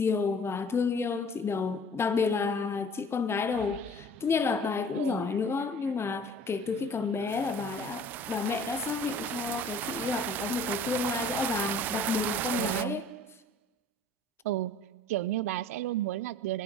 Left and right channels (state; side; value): normal; both; correlation 0.49